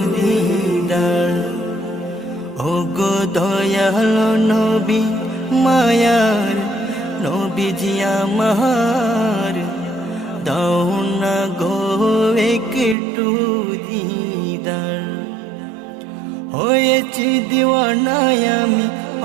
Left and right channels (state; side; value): drops out; left; at 13.0 s